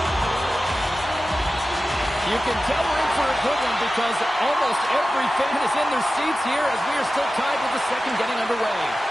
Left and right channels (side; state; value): both; normal; correlation 0.94